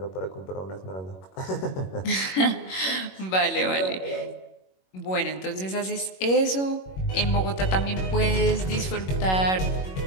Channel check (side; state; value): right; late; 21 ms